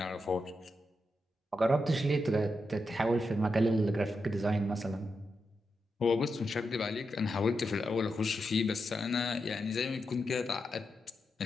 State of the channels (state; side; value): normal; both; correlation 0.86